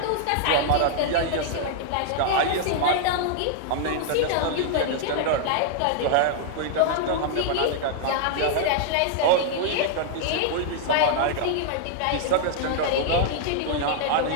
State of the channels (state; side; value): different; both; correlation -0.01